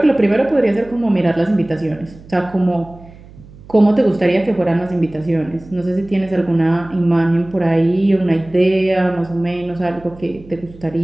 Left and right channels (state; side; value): noise; right; hum, 21 dB below the sound